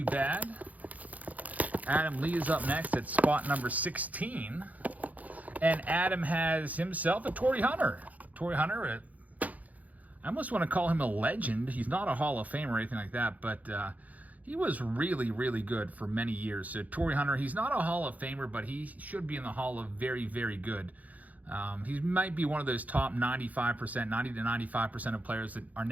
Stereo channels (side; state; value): left; late; 0.076 ms